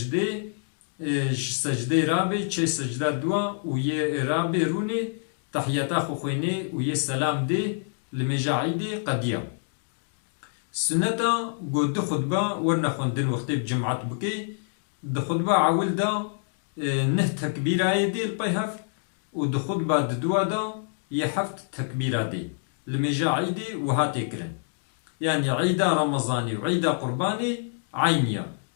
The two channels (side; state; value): right; silent; digital silence